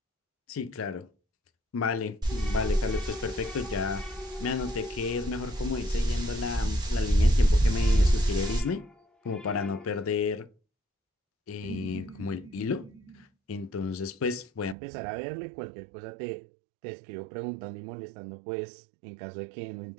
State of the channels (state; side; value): drops out; left; at 14.8 s